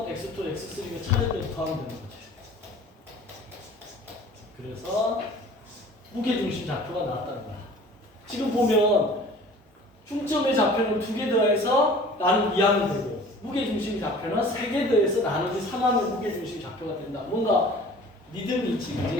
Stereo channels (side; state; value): both; normal; correlation 0.46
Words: x2, x3가 차례대로 더하면 되는 거지. 그래서 무게중심 좌표가 나왔다는 거야. 지금 보면 중점의 좌표는 2개 더해서 나누기 2하면 되고 무게중심 좌표는 3개 더해서 나누기 3하면 무게중심 좌표가 된다. 뭔가 리듬이 있지,